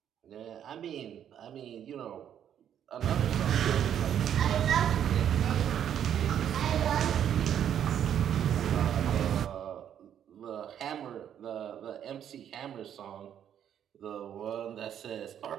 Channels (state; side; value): quieter; left; 9.5 dB